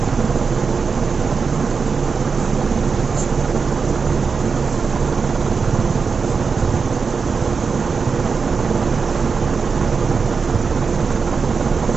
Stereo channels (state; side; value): quieter; left; 5.2 dB